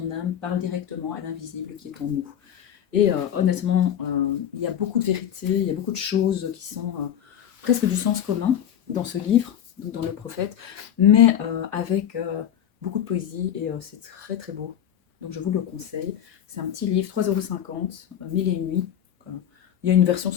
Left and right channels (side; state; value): right; quieter; 9.8 dB